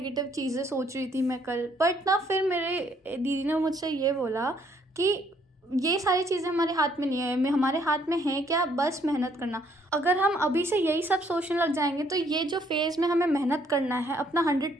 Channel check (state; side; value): normal; both; correlation 0.67